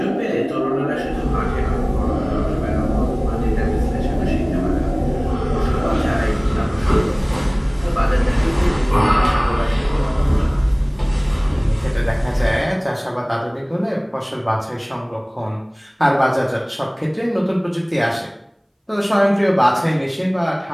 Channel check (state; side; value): identical; both; correlation 1.00